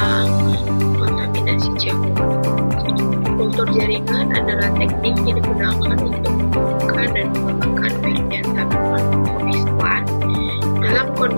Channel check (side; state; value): both; inverted; correlation -1.00